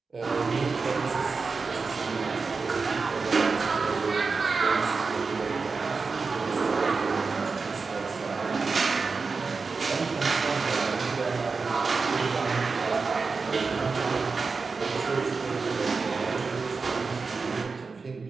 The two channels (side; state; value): left; quieter; 4.5 dB